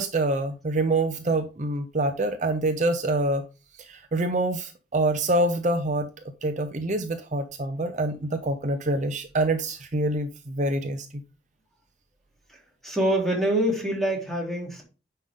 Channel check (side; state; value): both; normal; correlation 0.33